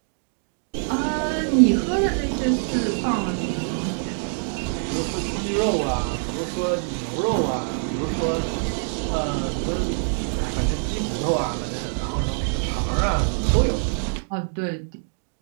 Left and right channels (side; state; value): left; silent; digital silence